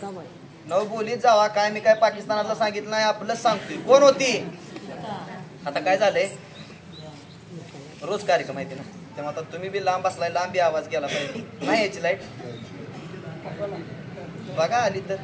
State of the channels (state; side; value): identical; both; correlation 1.00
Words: नव बोलीत जावा. काय मी काय पाकिस्तानाचं सांगितलं नाही, आपलंच सांगतोय. कोण होती? आता काय झालंय, रोज कार्यक्रम माहिती ना, तेव्हा आता तुम्ही बी लांब बसलाय, लांबी आवाज गेला पाहिजे. नाही याची लाईट बघा आली तर